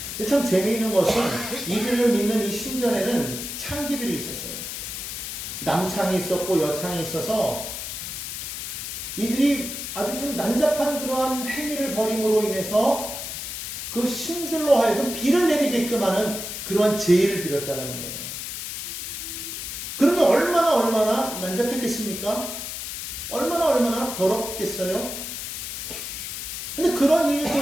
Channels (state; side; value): noise; left; hiss, 6 dB below the sound